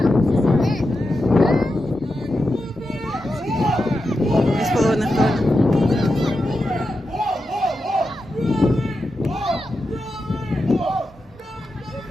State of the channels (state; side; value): normal; both; correlation 0.89